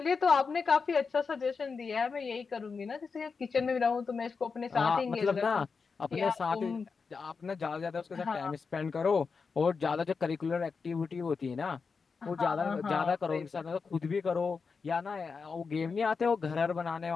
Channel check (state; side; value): quieter; right; 5.1 dB